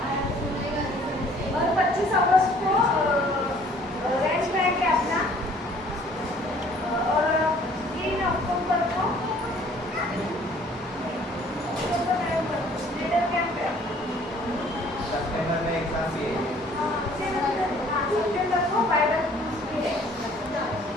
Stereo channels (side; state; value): both; normal; correlation 0.56